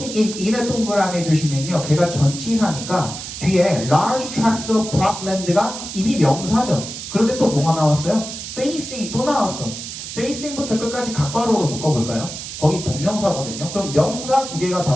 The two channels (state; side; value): noise; right; hiss, 9 dB below the sound